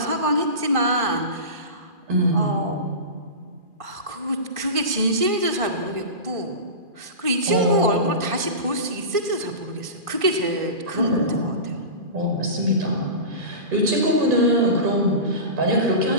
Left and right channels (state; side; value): late; left; 2.4 ms